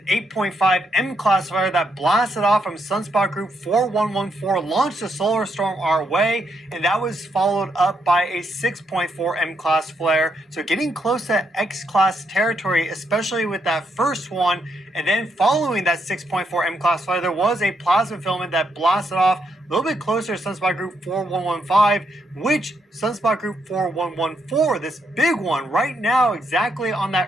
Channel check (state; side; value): normal; both; correlation 0.78